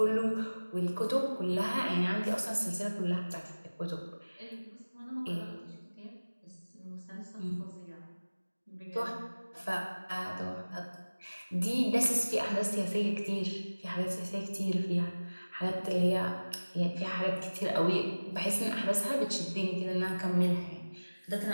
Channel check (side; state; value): both; inverted; correlation -1.00